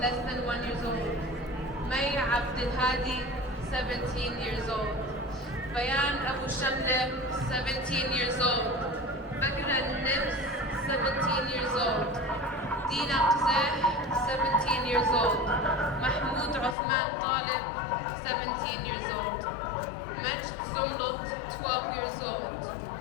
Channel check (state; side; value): drops out; right; at 16.8 s